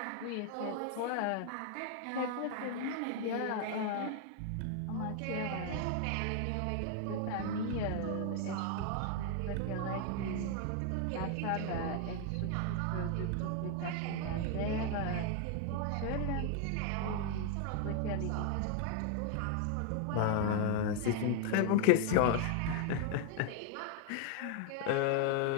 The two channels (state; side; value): different; both; correlation 0.00